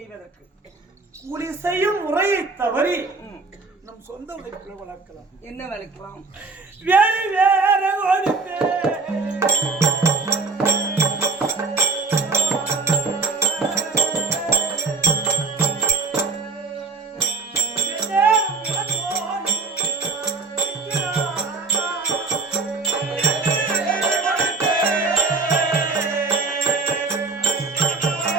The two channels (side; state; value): left; quieter; 4.1 dB